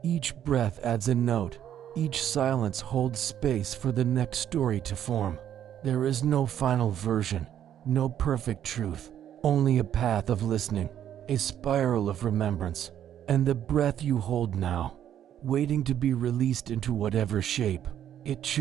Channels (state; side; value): quieter; left; 10.4 dB